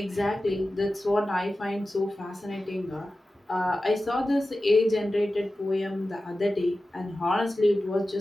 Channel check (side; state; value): both; normal; correlation 0.94